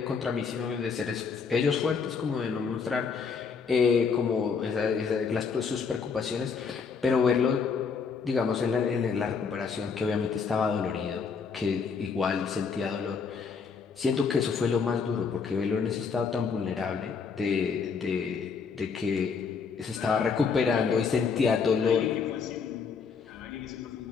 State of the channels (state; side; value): quieter; right; 5.6 dB